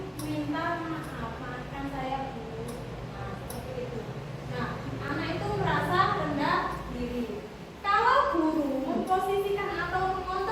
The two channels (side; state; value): both; identical; correlation 1.00